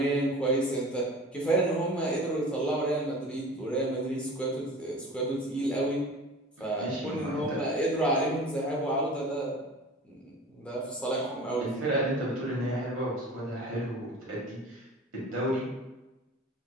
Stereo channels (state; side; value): normal; both; correlation 0.39